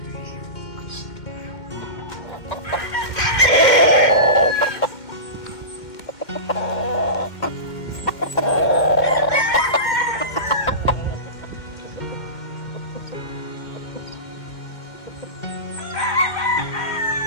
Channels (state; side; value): late; right; 2.1 ms